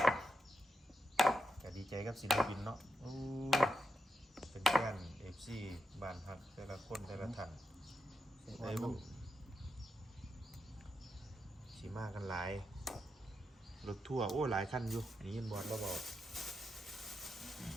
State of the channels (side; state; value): both; normal; correlation 0.85